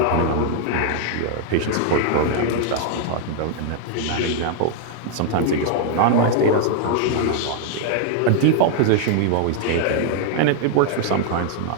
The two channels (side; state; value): both; different; correlation 0.00